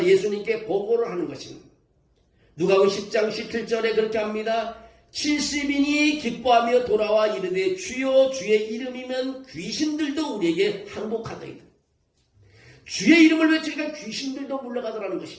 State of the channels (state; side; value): identical; both; correlation 1.00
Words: 예수님께 보고를 하는 것입니다. 누가복음 10장 17절에 그렇게 합니다. 70인이 기뻐하며 돌아와 이르되 주여 주의 이름이면 귀신들도 우리에게 항복하더이다. 주의 이름을 외치니까 귀신들도 물러가더라는